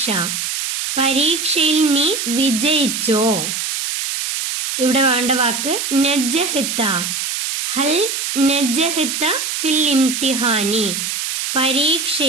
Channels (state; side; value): noise; right; hiss, 3 dB below the sound